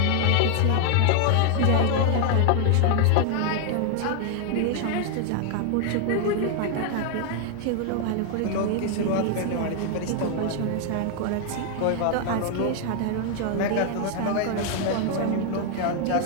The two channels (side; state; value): both; different; correlation 0.00